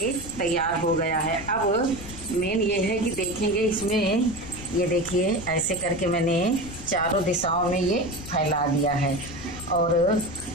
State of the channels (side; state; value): left; noise; rumble, 14 dB below the sound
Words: तैयार हो गया है। अब मेन ये है कि देखेंगे इसमें, ये देखिए ऐसे करके मैंने चारों दिशाओं में ये फैला दिया है और